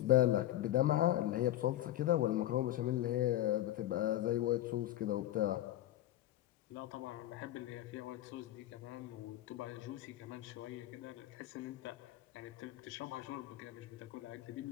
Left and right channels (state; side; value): quieter; right; 13.8 dB